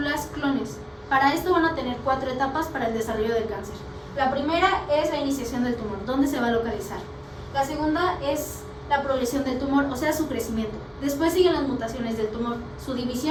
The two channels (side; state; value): both; identical; correlation 1.00